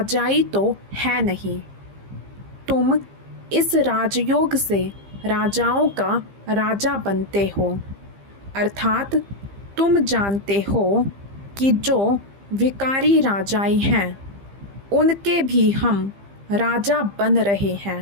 तो है नहीं। तुम इस राजयोग से राजाओं का राजा बनते हो, अर्थात तुम जानते हो कि जो विकारी राजाई हैं उनके भी हम राजा बन रहे हैं।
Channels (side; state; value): left; late; 15 ms